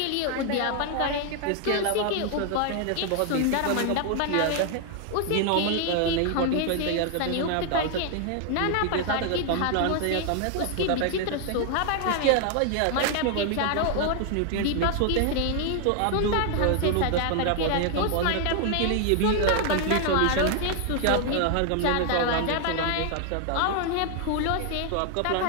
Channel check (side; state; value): both; different; correlation 0.00